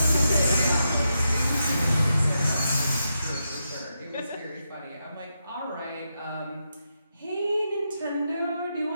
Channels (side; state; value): both; inverted; correlation -0.85